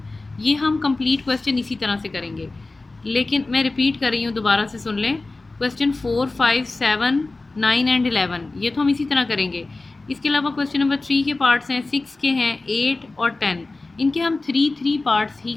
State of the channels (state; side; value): quieter; right; 3.3 dB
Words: ये हम कंप्लीट क्वेश्चन इसी तरह से करेंगे। लेकिन मैं रिपीट कर रही हूँ, दोबारा से सुन लें। क्वेश्चन 4, 5, 7, 9 एंड 11 ये तो हम इसी तरह करेंगे। इसके अलावा क्वेश्चन नंबर 3 के पार्ट्स हैं, 6 के हैं, 8 और 10, इनके हम 3 पार्ट्स ही